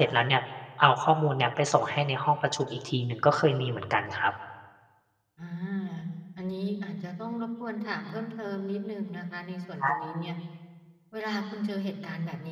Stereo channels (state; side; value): identical; both; correlation 1.00